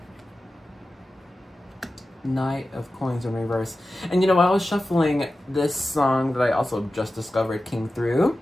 Knight of Coins in reverse. And you know, while I was shuffling, this song that I also just discovered came through.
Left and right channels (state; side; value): normal; both; correlation 0.94